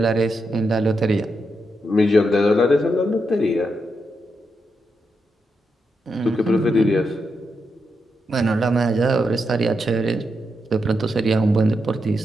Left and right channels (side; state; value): both; normal; correlation 0.84